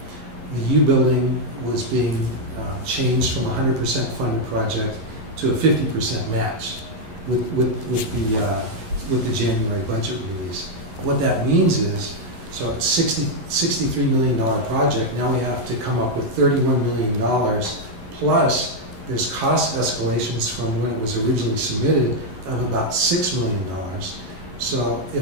U building was being changed from a 100% funded project to a 50% match with the January budget release. What that means is, so it's $63 million project, now we have to come up with $31 million, plus there's cost escalations from when it was originally submitted of about $6 million. So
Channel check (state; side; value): late; left; 11 ms